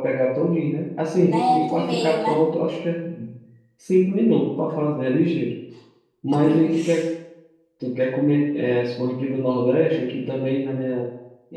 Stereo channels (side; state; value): both; identical; correlation 1.00